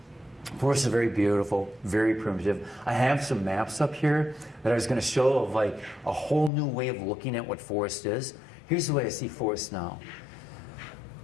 Forest is very beautiful, very primitive. I have some maps up here that I was going to show of like a whole new way of looking at what forest is. Here's the way I see forest now.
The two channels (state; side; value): drops out; right; at 6.5 s